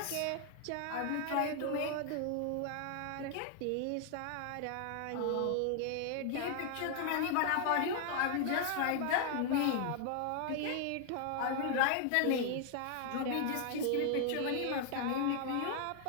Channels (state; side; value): different; both; correlation 0.00